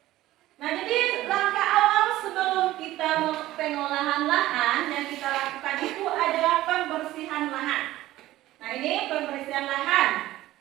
Nah, jadi langkah awal sebelum kita pengolahan lahan yang kita lakukan itu adalah pembersihan lahan. Nah, ini pembersihan lahan.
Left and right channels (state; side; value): quieter; left; 15.7 dB